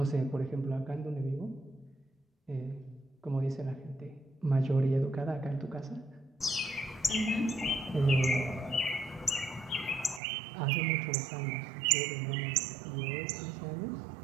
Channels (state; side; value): drops out; left; at 10.2 s